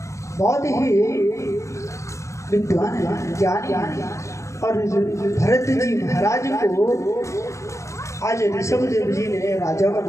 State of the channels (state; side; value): late; right; 0.14 ms